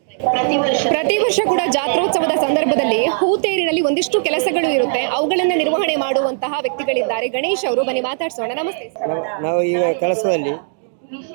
ಪ್ರತಿ ವರ್ಷ ಕೂಡ ಜಾತ್ರೋತ್ಸವದ ಸಂದರ್ಭದಲ್ಲಿ ಹೂತೇರಿನಲ್ಲಿ ಒಂದಿಷ್ಟು ಕೆಲಸಗಳು ಇರುತ್ತೆ, ಅವುಗಳನ್ನ ನಿರ್ವಹಣೆ ಮಾಡುವಂತಹ ವ್ಯಕ್ತಿಗಳಿದ್ದಾರೆ. ಗಣೇಶ್ ಅವರು, ಬನ್ನಿ ಮಾತಾಡ್ಸೋಣ. ನಮಸ್ತೆ. ನಾವು ಈಗ ಕೆಲಸದಲ್ಲಿ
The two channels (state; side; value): silent; left; digital silence